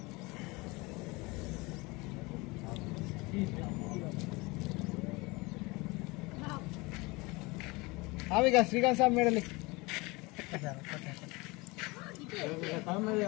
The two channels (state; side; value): quieter; right; 24.4 dB